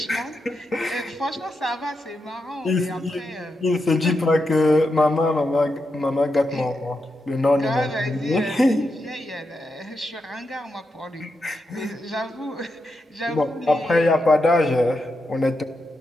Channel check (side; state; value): both; normal; correlation 0.85